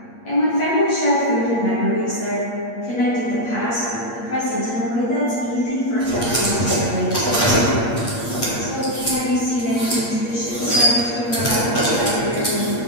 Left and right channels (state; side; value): late; right; 8.5 ms